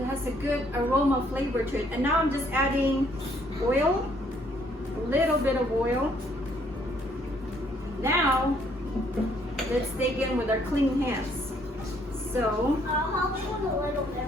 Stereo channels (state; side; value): normal; both; correlation 0.66